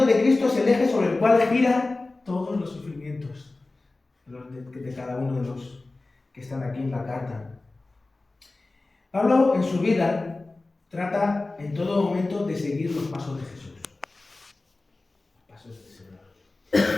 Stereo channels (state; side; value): quieter; right; 3.2 dB